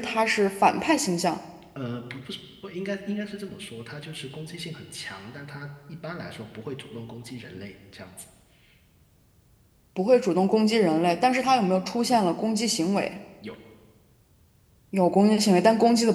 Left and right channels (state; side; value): identical; both; correlation 1.00